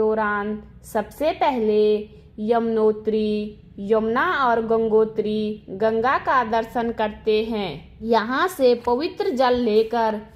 सबसे पहले यमुनोत्री, यमुना और गंगोत्री गंगा का दर्शन करते हैं। यहाँ से पवित्र जल लेकर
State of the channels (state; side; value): identical; both; correlation 1.00